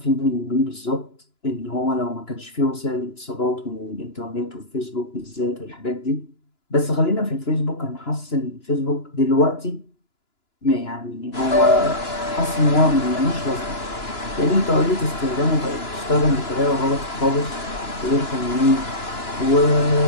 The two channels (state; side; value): late; right; 2.9 ms